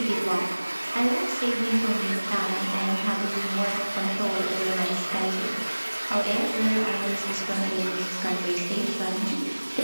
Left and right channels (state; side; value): inverted; both; correlation -1.00